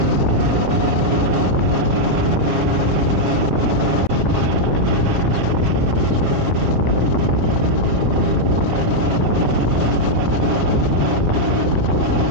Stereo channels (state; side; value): late; left; 7.3 ms